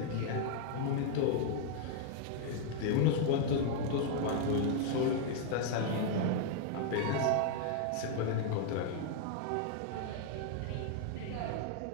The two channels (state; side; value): different; both; correlation -0.01